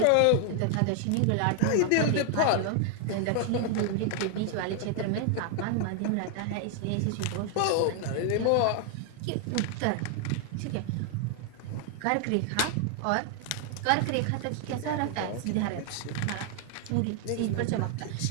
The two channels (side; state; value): both; different; correlation 0.00